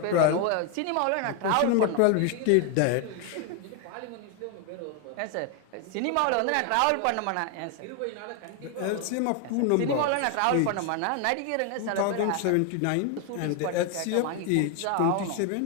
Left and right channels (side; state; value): both; different; correlation 0.01